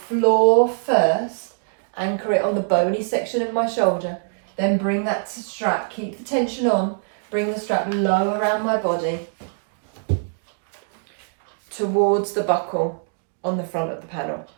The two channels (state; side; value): silent; left; digital silence